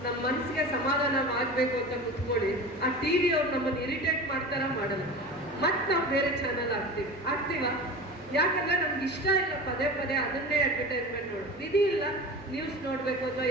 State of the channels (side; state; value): both; normal; correlation 0.32